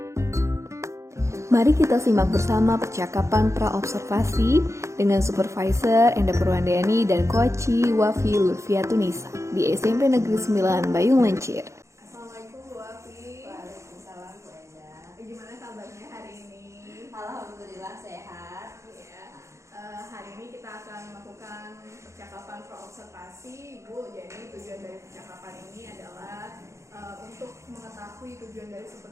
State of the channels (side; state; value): left; late; 0.14 ms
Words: Mari kita simak bersama percakapan pra-observasi dengan Supervisor Enda Purwandani dan Koci Wafi Lutfiatunisa di SMP Negeri 9 Bayung Lencir. Assalamualaikum Bu Wafi. Waalaikumsalam Bu Enda. Gimana kabarnya hari ini? Alhamdulillah sehat. Ya, hari ini kita akan melakukan percakapan pra-observasi Bu. Jadi tujuan dari percakapan ini adalah untuk mengetahui tujuan dari